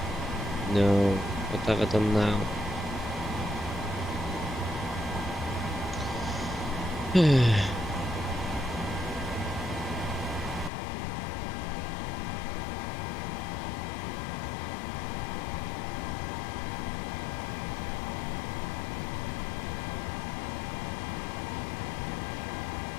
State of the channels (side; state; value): right; drops out; at 10.7 s